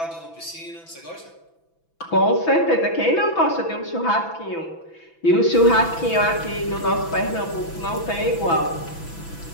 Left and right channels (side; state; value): right; late; 6.0 ms